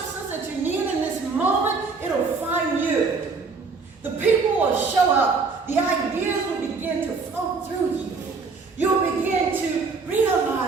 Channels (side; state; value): left; quieter; 4.5 dB